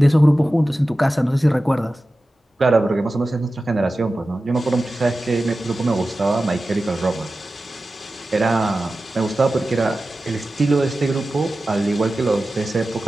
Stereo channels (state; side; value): normal; both; correlation 0.94